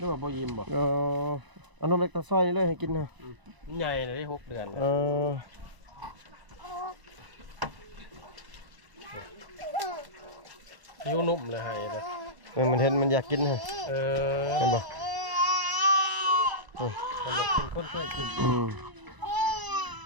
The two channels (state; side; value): late; left; 1.0 ms